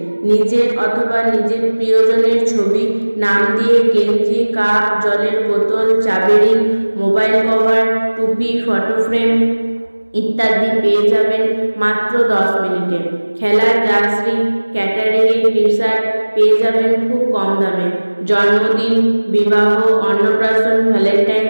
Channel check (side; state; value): both; inverted; correlation -1.00